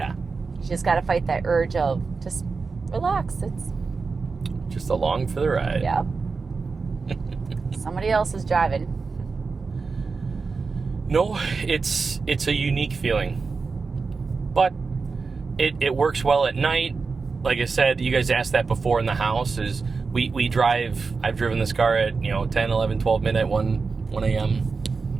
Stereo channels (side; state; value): left; quieter; 4.6 dB